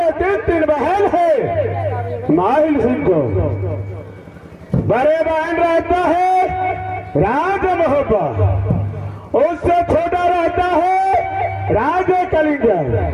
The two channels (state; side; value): identical; both; correlation 1.00